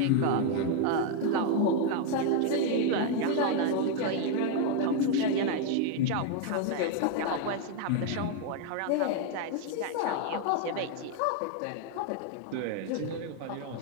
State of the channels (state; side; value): different; both; correlation 0.01